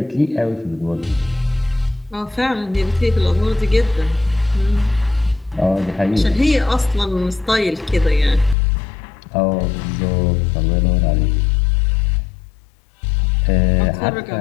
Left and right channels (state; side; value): drops out; right; at 8.6 s